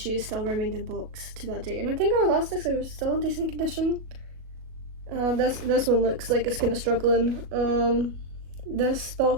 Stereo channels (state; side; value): late; left; 37 ms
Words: still remained in box to that day. And I think her elastics are still in decent condition. This one looks like it's kind of struggling. This